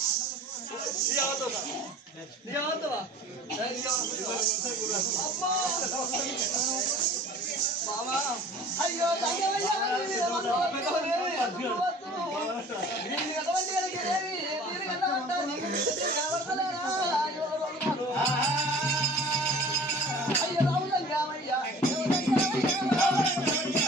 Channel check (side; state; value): both; normal; correlation 0.46